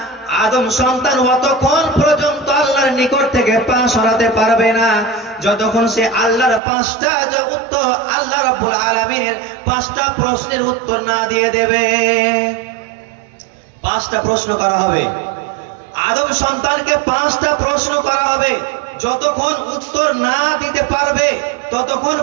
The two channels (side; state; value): left; drops out; at 6.6 s